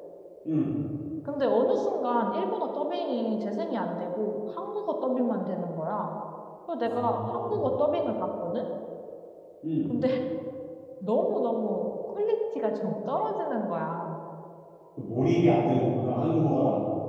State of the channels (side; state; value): both; identical; correlation 1.00